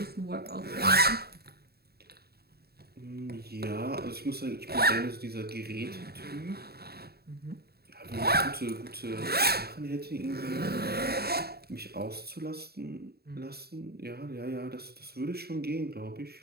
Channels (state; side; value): late; left; 0.46 ms